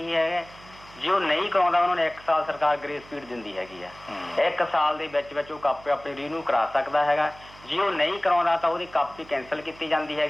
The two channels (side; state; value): right; noise; hum, 22 dB below the sound